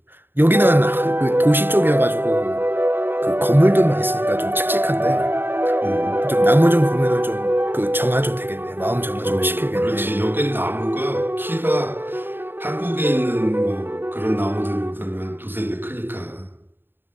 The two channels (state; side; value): late; left; 0.099 ms